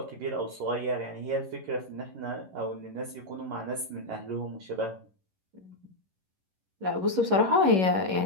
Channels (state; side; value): late; left; 11 ms